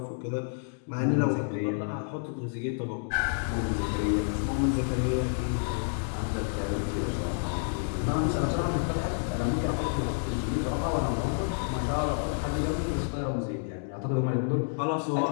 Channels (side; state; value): right; silent; digital silence